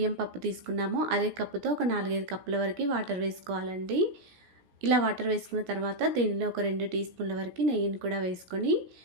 పప్పు తీసుకున్నామో అదే కప్పుతో ఒక 4, 5 కప్పుల వరకు వాటర్ వేసుకోవాలండి. ఇలా వాటర్ వేసుకున్న తర్వాత దీనిలో ఒక 2 టీ స్పూన్ల వరకు నెయ్యిని కూడా వేసుకొని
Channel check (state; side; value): late; left; 17 ms